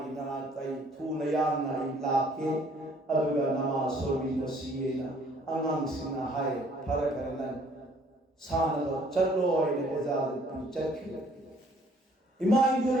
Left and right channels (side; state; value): both; normal; correlation 0.60